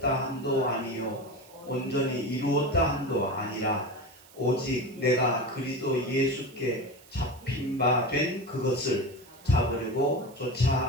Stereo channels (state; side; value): noise; right; hiss, 24 dB below the sound